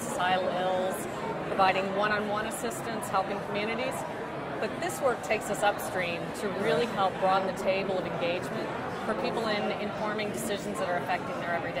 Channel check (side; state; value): both; identical; correlation 1.00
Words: ills, providing one-on-one assistance, helping communities. But this work takes us upstream to really help broaden the table of engagement for people in informing decisions that are affecting their